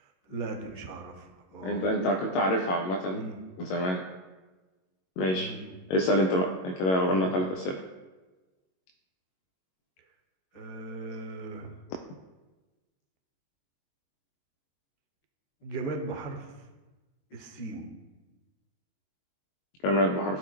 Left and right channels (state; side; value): late; right; 22 ms